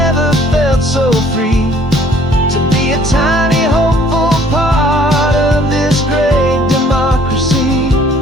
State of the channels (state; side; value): normal; both; correlation 0.58